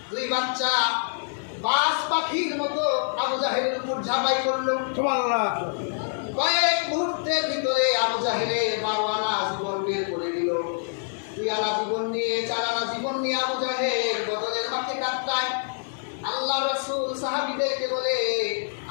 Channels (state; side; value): silent; right; 59 dB below the other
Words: দুই বাচ্চা বাস পাখির মতো আবু জাহেলের উপর ঝাঁপাই করলো। কয়েক মুহূর্তের ভিতরে আবু জাহেলের 12 আনা জীবন বের করে দিল। 2 আনা জীবন নিয়ে 4 আনা জীবন নিয়ে আবু জাহেল বদরের মাঠে কাটায়। আল্লাহ রাসূল সাহাবীদেরকে বলে,